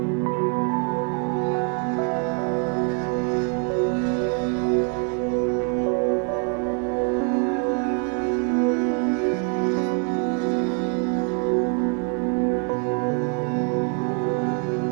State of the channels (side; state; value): left; quieter; 38.2 dB